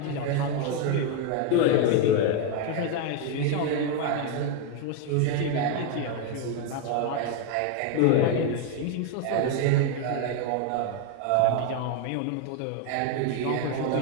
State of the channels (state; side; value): different; both; correlation 0.01